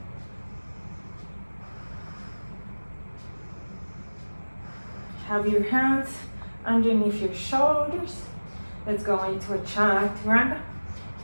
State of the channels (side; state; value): both; inverted; correlation -1.00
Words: Have your hands underneath your shoulders. Let's go into a chaturanga.